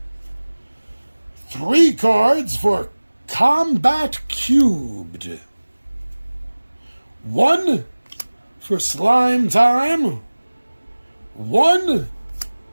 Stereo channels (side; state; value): both; inverted; correlation -1.00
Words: 3 cards for Combat Cubed. 1 for Slime Time. 1